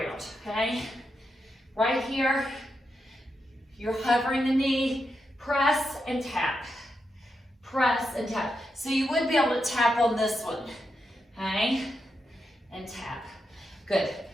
okay? Right here, you're hovering the knee, press and tap. Press and tap. So you would be able to tap on this one, okay? And tap. Good.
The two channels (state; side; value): normal; both; correlation 0.85